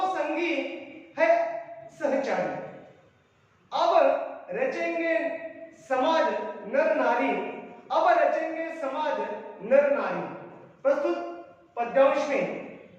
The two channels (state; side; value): identical; both; correlation 1.00